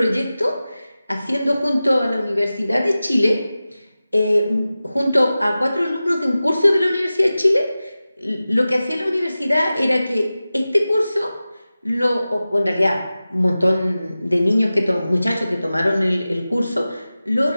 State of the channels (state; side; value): inverted; both; correlation -0.95